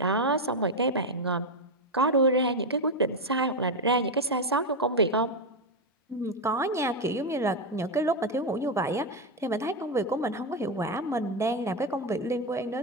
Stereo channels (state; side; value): normal; both; correlation 0.07